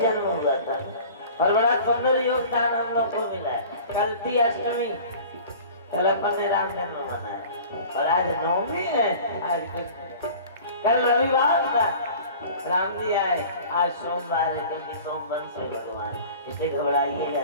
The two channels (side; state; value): both; inverted; correlation -0.42